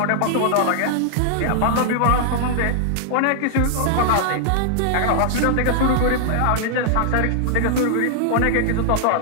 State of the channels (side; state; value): both; different; correlation -0.01